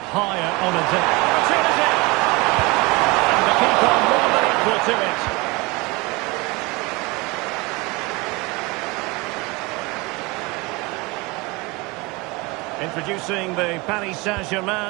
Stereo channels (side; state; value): left; quieter; 24.7 dB